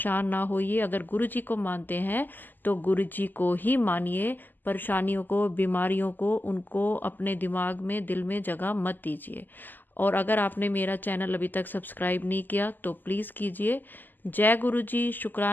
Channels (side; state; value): right; late; 0.088 ms